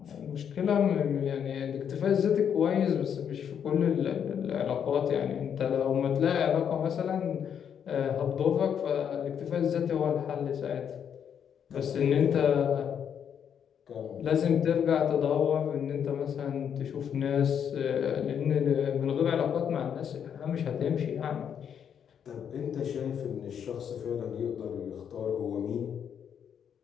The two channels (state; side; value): quieter; right; 8.2 dB